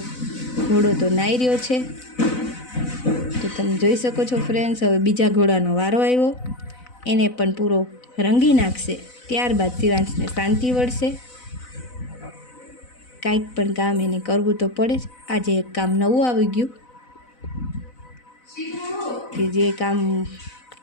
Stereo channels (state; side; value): late; right; 4.0 ms